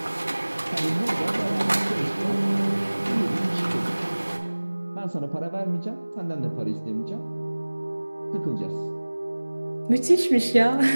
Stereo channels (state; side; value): inverted; both; correlation -1.00